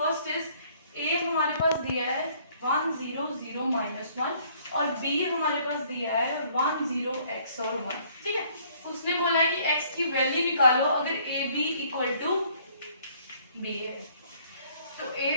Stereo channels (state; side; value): inverted; both; correlation -0.61